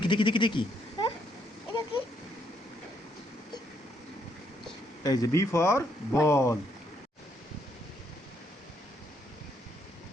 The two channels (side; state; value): both; normal; correlation 0.73